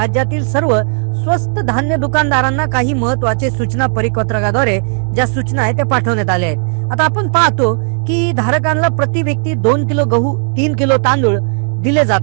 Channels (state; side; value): silent; left; 65 dB below the other